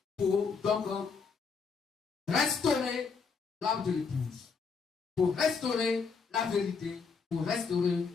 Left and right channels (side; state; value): right; quieter; 5.3 dB